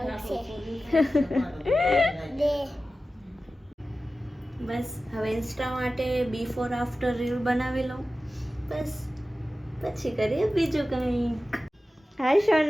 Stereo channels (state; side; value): normal; both; correlation 0.95